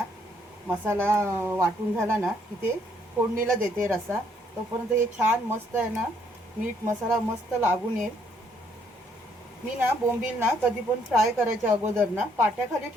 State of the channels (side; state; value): both; normal; correlation 0.68